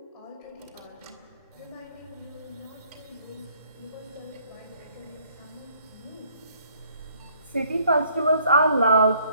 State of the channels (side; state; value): both; inverted; correlation -0.63